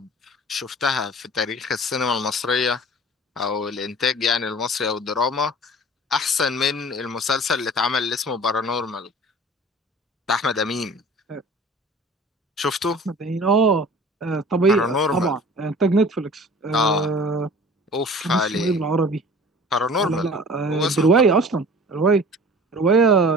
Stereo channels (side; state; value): both; normal; correlation 0.44